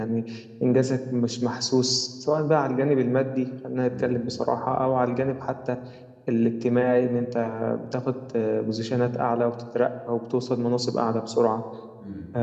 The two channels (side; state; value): both; identical; correlation 1.00